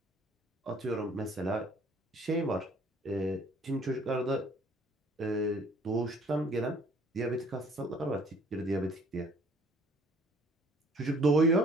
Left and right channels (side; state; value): both; normal; correlation 0.56